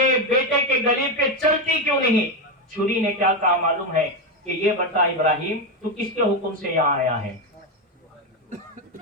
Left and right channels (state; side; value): normal; both; correlation 0.10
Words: بیٹے کے گلے پہ چلتی کیوں نہیں؟ چھری نے کیا کہا معلوم ہے کہ یہ بتا ابراہیم تو کس کے حکم سے یہاں آیا ہے،